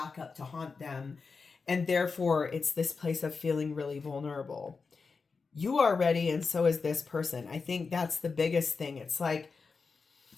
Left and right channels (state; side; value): quieter; right; 4.8 dB